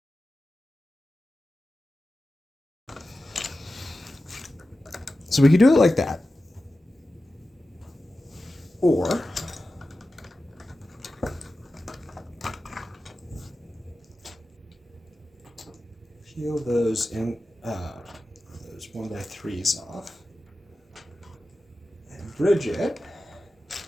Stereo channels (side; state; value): both; normal; correlation 0.94